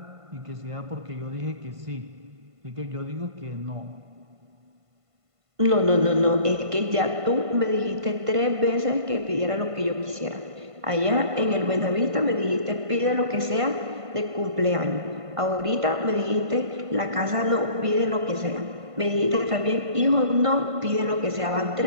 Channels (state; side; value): late; left; 1.5 ms